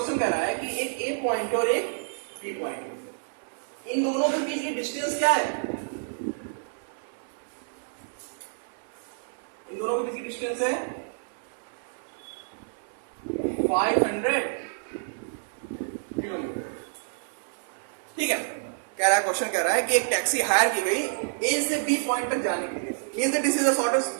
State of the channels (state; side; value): silent; left; 59 dB below the other